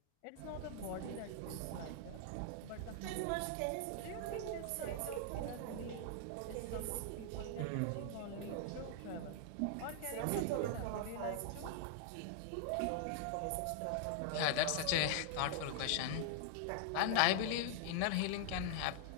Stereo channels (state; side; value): different; both; correlation 0.00